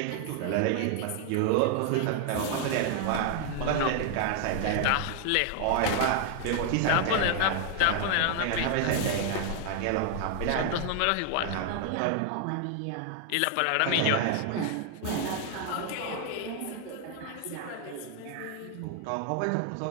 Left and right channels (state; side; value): different; both; correlation 0.00